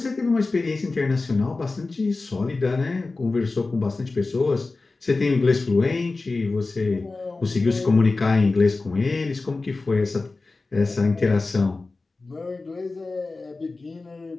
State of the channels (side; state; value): right; quieter; 3.6 dB